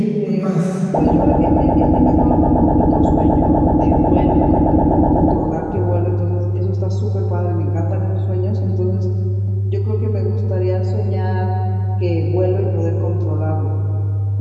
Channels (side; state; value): both; identical; correlation 1.00